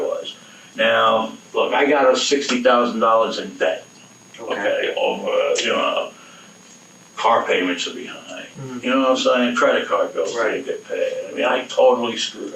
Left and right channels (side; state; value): both; identical; correlation 1.00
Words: was. Now, look, I got us $60,000 in debt. Okay, over, car payments are behind. Mm-hmm. You know what I'm saying? Credit card bills didn't get paid. I mean, I totally screwed